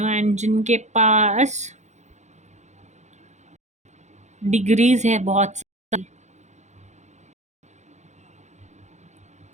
जिनके पास डिग्रीज है बहुत सारी,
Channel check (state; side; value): late; left; 0.34 ms